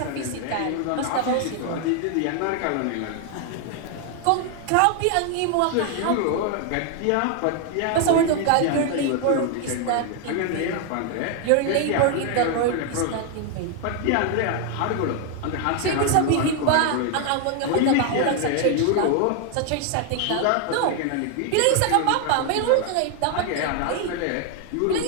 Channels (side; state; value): both; different; correlation 0.00